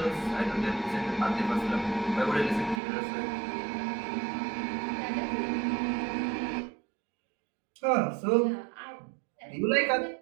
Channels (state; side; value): drops out; left; at 2.8 s